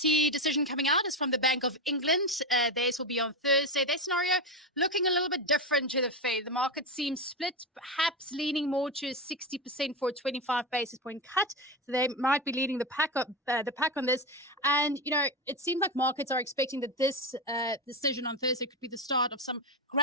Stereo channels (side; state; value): both; normal; correlation 0.14